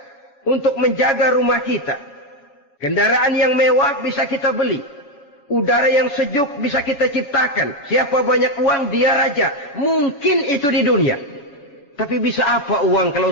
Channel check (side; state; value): right; late; 7.1 ms